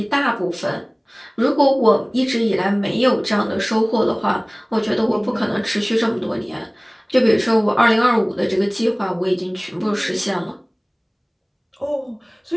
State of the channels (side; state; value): both; identical; correlation 1.00